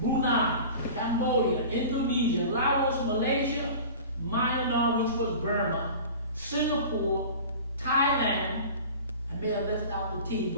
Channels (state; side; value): inverted; both; correlation -0.38